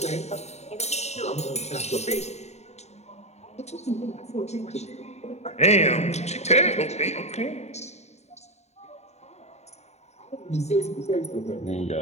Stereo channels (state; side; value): late; right; 0.32 ms